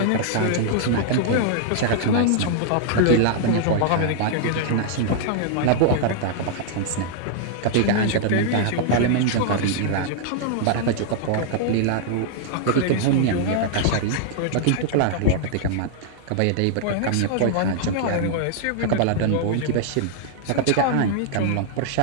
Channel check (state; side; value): different; both; correlation -0.01